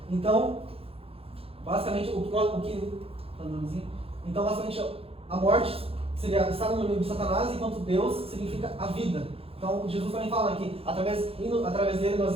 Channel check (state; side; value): late; left; 0.28 ms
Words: Então, basicamente, a morte seria estar no domínio de Satanás, enquanto Deus significa a vida. Então, Jesus também fala que através dele